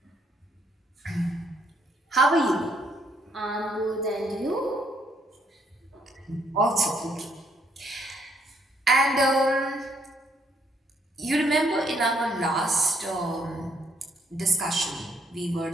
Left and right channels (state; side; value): normal; both; correlation 0.70